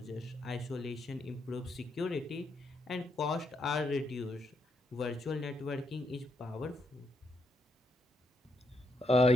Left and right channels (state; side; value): normal; both; correlation 0.79